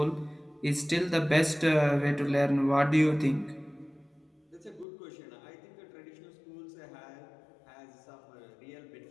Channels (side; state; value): right; drops out; at 4.9 s